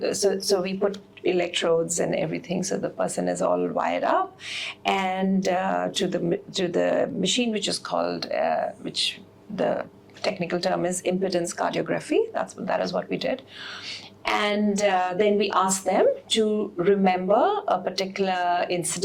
so we put electrodes and everything, so the person is all wired up, and to the machine, which is called, which the technical term is impedance cardiography. That is what we did. And then we asked them to remember a particular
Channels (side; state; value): both; identical; correlation 1.00